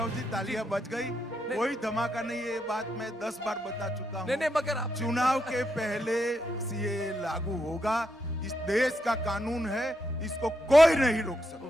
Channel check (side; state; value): both; normal; correlation 0.81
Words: जी, तालियां बज गई, कोई धमाका नहीं। ये बात मैं 10 बार बता चुका हूं। नहीं, मगर आप चुनाव के पहले सीएए लागू होगा। इस देश का कानून है, इसको कोई नहीं रोक